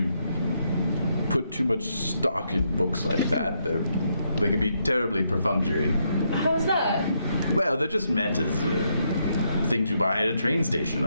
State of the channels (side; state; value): both; inverted; correlation -0.78